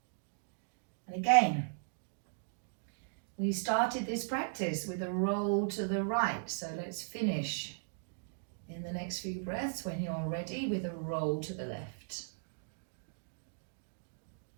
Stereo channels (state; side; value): silent; left; digital silence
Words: And again, we started this practice with a roll to the right, so let's finish in the next few breaths when you're ready with a roll to the left.